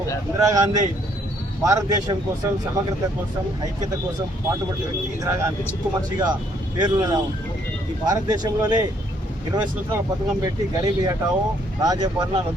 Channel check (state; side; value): normal; both; correlation 0.67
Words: ఇందిరాగాంధీ భారతదేశం కోసం, సమగ్రత కోసం, ఐక్యత కోసం పాటుపడిన వ్యక్తి ఇందిరాగాంధీ. చిక్కు మనిషిగా పేరున్న ఈ భారతదేశంలోనే 20 సంవత్సరాల పథకం పెట్టి గరీబీ హఠావో, రాజభరణ